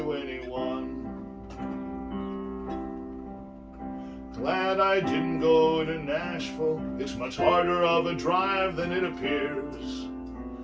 anyone. Glad I didn't go to Nashville, it's much harder of a drive than it appears.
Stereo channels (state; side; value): identical; both; correlation 1.00